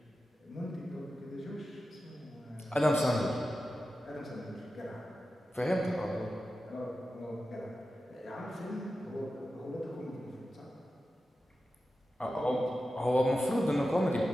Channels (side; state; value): both; normal; correlation 0.92